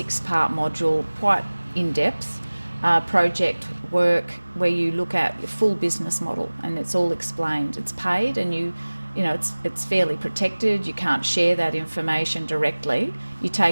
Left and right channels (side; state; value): both; inverted; correlation -1.00